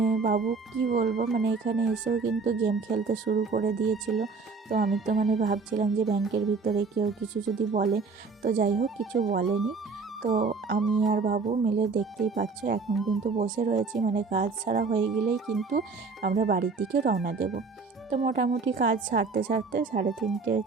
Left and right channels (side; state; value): left; quieter; 4.5 dB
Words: বাবু কি বলবো, মানে এখানে এসেও কিন্তু গেম খেলতে শুরু করে দিয়েছিল। তো আমি তো মানে ভাবছিলাম যে ব্যাংকের ভিতরে কেউ কিছু যদি বলে, তো যাই হোক কিছু বলেনি। তো আমি আর বাবু মিলে দেখতেই পাচ্ছ এখন কিন্তু বসে রয়েছি, মানে কাজ ছাড়া হয়ে গেলেই কিন্তু আমরা বাড়ির দিকে রওনা দেব। তো মোটামুটি কাজ সারতে সারতে 3:30